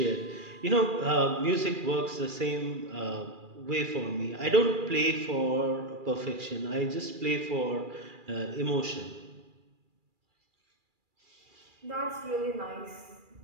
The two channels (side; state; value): left; late; 2.4 ms